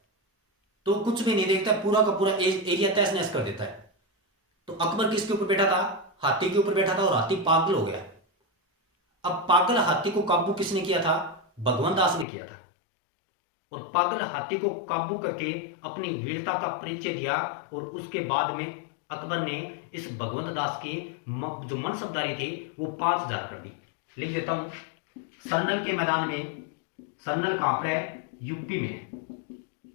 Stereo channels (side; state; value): right; drops out; at 12.2 s